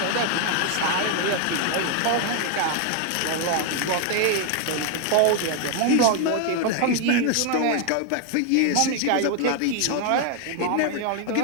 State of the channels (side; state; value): both; different; correlation 0.00